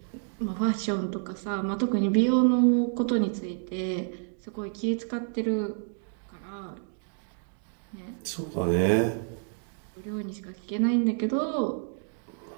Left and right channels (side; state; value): left; silent; 59 dB below the other